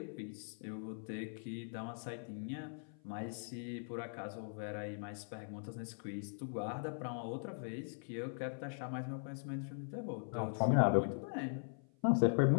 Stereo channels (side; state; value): right; silent; 51 dB below the other